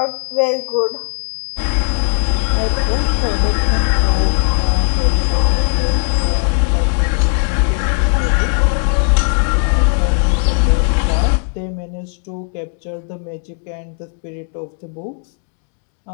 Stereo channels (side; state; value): right; silent; 55 dB below the other